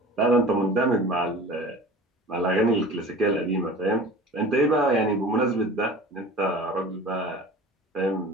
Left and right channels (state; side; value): normal; both; correlation 0.40